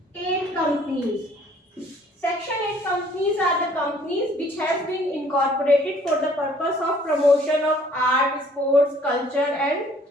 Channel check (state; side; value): normal; both; correlation 0.58